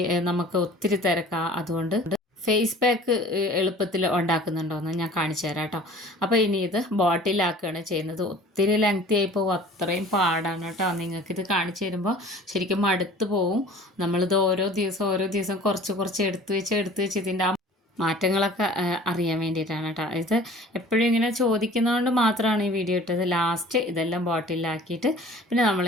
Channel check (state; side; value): normal; both; correlation 0.46